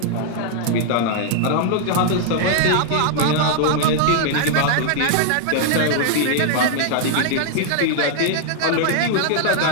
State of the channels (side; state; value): both; different; correlation 0.00